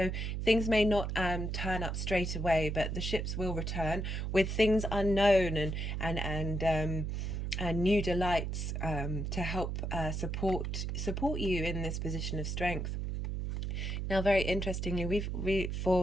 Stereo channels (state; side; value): noise; right; hum, 2 dB below the sound